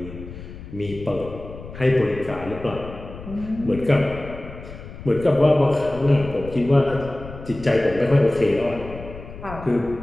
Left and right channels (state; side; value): noise; left; rumble, 13 dB below the sound